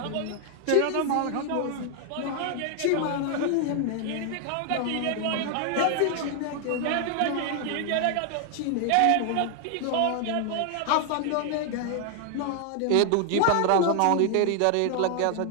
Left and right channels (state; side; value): different; both; correlation 0.00